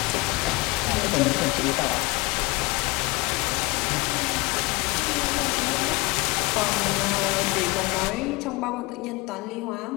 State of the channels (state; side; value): quieter; right; 24.5 dB